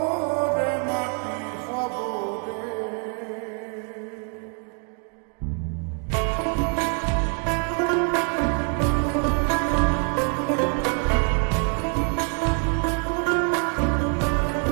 রে মাটি হব রে।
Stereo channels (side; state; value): left; quieter; 38.4 dB